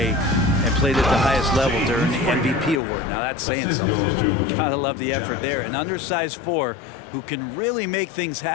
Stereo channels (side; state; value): right; drops out; at 2.8 s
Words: and played at the highest level during the MVP award. Now that's saying something. Gotta love the effort there. An undersized 4 who can really make things